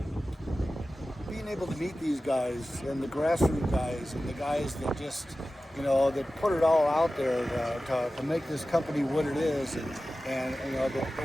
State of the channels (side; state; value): both; normal; correlation 0.95